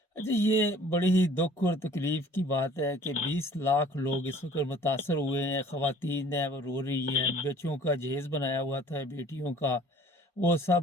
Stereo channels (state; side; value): normal; both; correlation 0.51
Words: अच्छा, ये बड़ी ही दुख और तकलीफ की बात है कि 20 लाख लोग इस वक्त मुतासर हुए हैं। ख़वातीन हैं वो रो रही हैं, बच्चों का जहेज बनाया हुआ था बेटियों का, वो